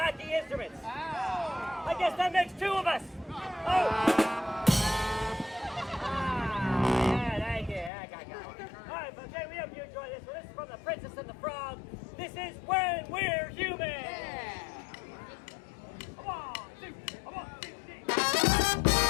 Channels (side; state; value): right; drops out; at 7.9 s